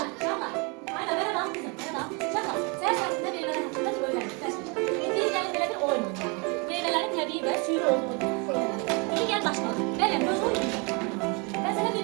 Aynen merhaba kızım. Merhaba. Şaka. Sen sayesinde meyveler hakkında öğrendik. Bildiğin yani böyle bir oyun oynuyor. Meyvelerin tabii ve suyu olduğunu. İyi gel başlayalım. Benim göz oyunu. Ben sana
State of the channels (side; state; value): left; quieter; 31.5 dB